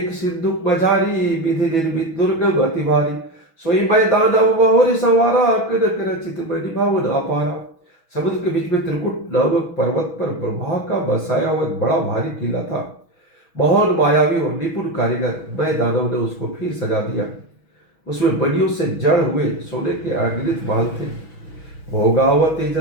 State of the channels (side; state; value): right; late; 6.1 ms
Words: सिंधु मझारी विधि निर्मित दुर्गम अति भारी सोई मैदान बहुरी संवारा कनक रचित मणि भावन अपारा। समुद्र के बीच में त्रिकुट नामक पर्वत पर ब्रह्मा का बसाया हुआ एक बड़ा भारी किला था। महान मायावी और निपुण कारीगर मैं दानव ने उसको फिर सजा दिया। उसमें मणियों से जड़ हुए सोने के अगणित महल थे। भोगावती